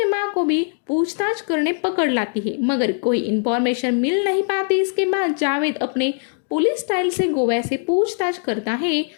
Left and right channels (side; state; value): right; silent; 55 dB below the other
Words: माँ को भी पूछताछ करने पकड़ लाती है, मगर कोई इन्फॉर्मेशन मिल नहीं पाती। इसके बाद जावेद अपने पुलिस स्टाइल से गोवा से पूछताछ करता है